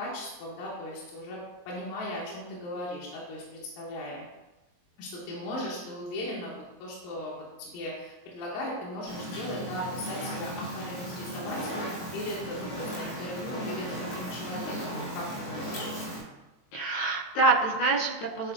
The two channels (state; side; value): late; right; 23 ms